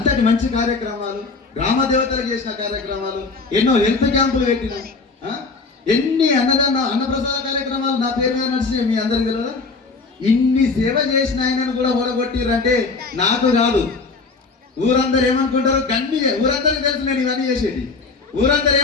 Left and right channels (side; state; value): right; quieter; 4.2 dB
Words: మంచి కార్యక్రమాలు, గ్రామ దేవతలకు చేసిన కార్యక్రమాలు, ఎన్నో హెల్త్ క్యాంపులు పెట్టిన, ఎన్ని అన్నప్రసాద కార్యక్రమాలు నా పేరు మీద నడిచినాయి. మీ అందరికి తెలియదా? ఇన్ని సేవ చేసిన ఆయనను కూడా ఓడగొట్టిరంటే నాకు కాదు, ఊరందరూ ఏమనుకుంటారు? ఊరందరికి తెలుసు నేను ఇవన్నీ చేసేది. ఊరందరూ